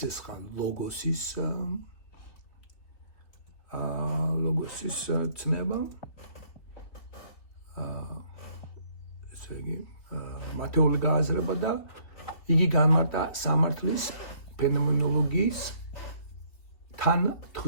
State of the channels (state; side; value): late; right; 3.3 ms